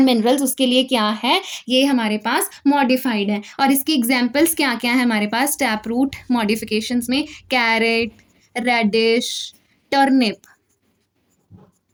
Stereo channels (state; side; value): identical; both; correlation 1.00